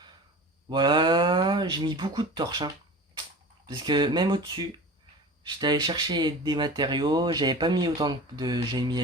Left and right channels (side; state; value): both; normal; correlation 0.36